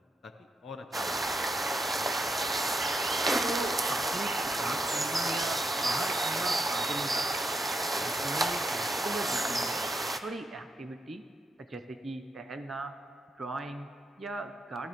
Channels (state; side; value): normal; both; correlation 0.81